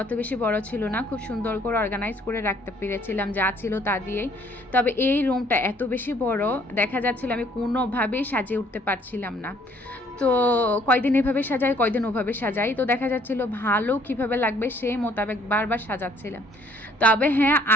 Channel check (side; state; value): both; normal; correlation 0.61